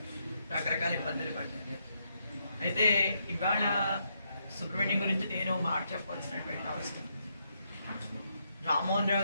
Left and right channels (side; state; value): both; inverted; correlation -0.78